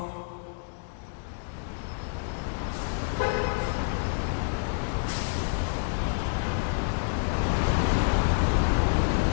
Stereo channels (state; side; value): silent; right; digital silence